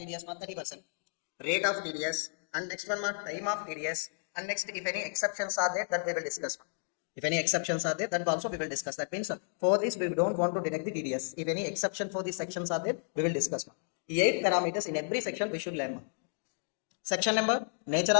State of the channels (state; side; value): silent; right; digital silence